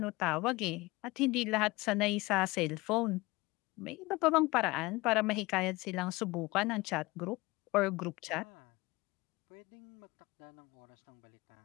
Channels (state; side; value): quieter; right; 21.9 dB